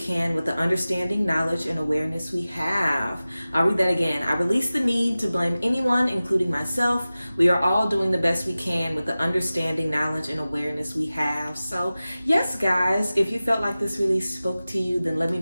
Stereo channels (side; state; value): both; inverted; correlation -0.96